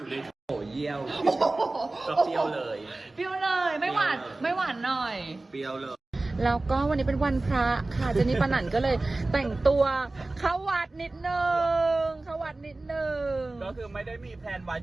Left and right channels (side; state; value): left; quieter; 3.0 dB